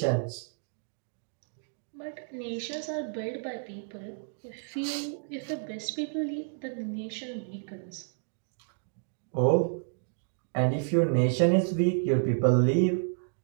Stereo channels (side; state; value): left; silent; digital silence